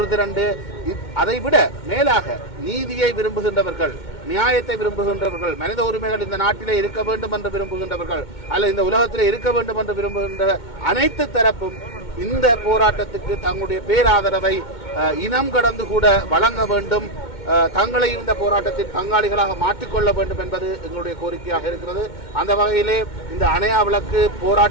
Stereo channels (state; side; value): late; right; 2.2 ms